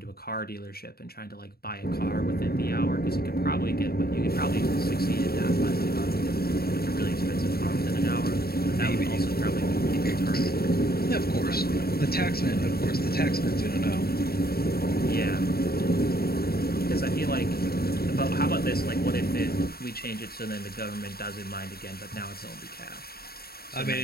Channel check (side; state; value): right; late; 0.45 ms